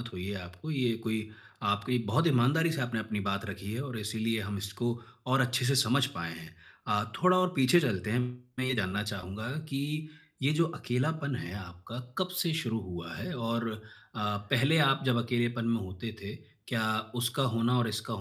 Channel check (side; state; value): both; identical; correlation 1.00